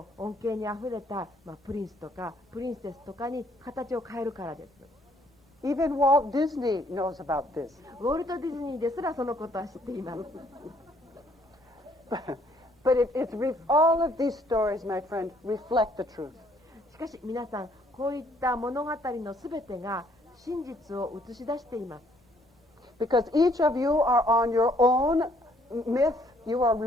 恩恵にあふれた、プリンスとかプリンセスとかに形を変えるからです。Even Walt Disney knows about this. ウォルト・ディズニーですらそのことは知っています。But all of these stories, my friend, reflect the truth. しかし皆さん、こういった物語のすべてが真実を映し出しています。Because each of you are on your own myth, you are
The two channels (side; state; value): both; normal; correlation 0.65